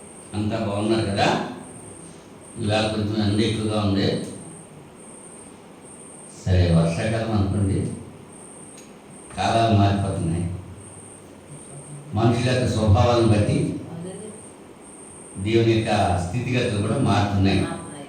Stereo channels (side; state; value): both; identical; correlation 1.00